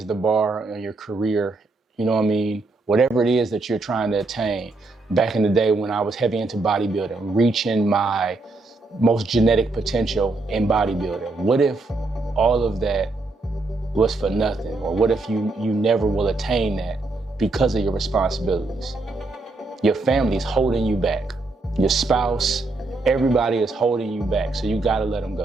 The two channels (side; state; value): left; quieter; 3.3 dB